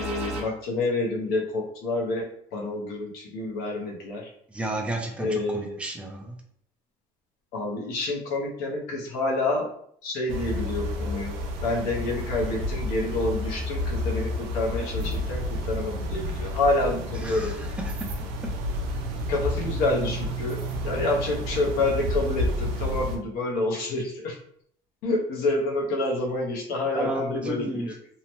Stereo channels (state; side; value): normal; both; correlation 0.43